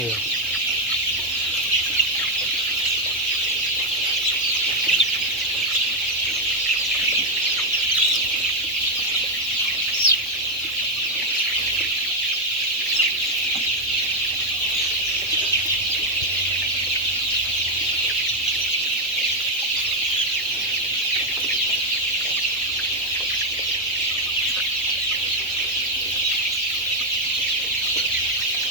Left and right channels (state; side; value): normal; both; correlation 0.04